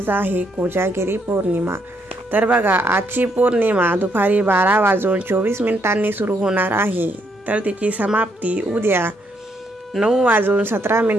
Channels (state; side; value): normal; both; correlation 0.74